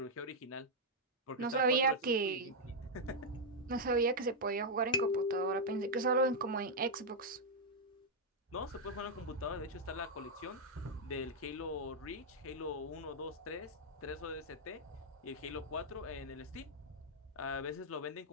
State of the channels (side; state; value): both; normal; correlation -0.04